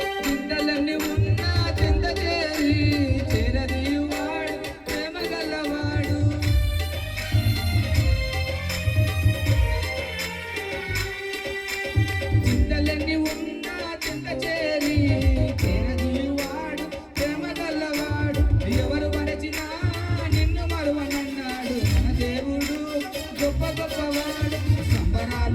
చింతలన్నీ ఉన్న చింత చేరి చిరదీవాడు ప్రేమ గల్లవాడు చింతలన్నీ ఉన్న చింత చేరి చిరదీవాడు ప్రేమ గల్లవాడు ఎవరు మరచినా నిన్ను మరువనన్నాడు మన దేవుడు గొప్ప గొప్పవాడు.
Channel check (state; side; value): identical; both; correlation 1.00